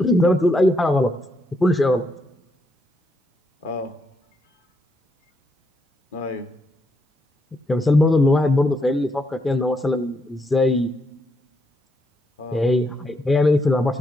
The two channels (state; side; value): normal; both; correlation 0.78